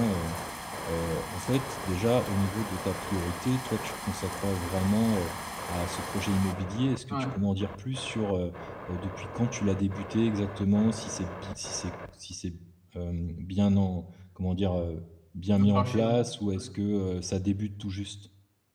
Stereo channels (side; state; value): both; identical; correlation 1.00